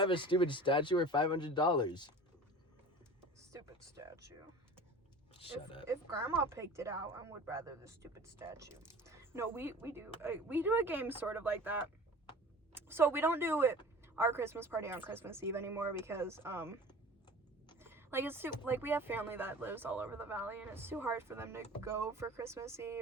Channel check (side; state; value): both; normal; correlation 0.40